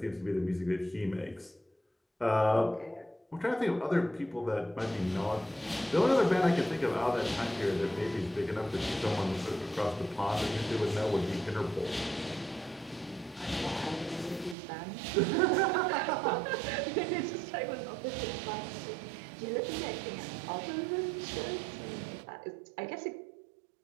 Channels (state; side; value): drops out; left; at 14.6 s